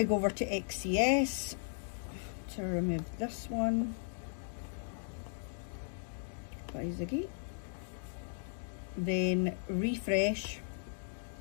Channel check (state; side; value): silent; right; digital silence